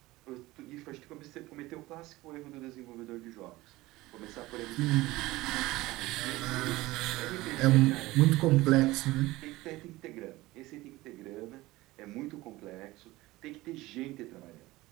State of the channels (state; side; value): quieter; left; 19.1 dB